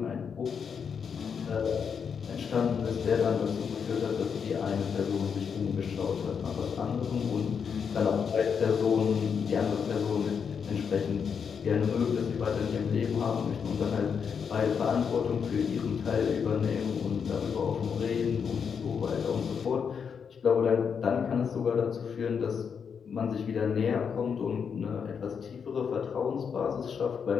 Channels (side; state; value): right; quieter; 6.7 dB